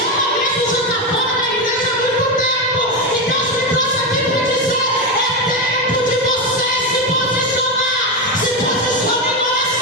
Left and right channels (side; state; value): both; normal; correlation 0.12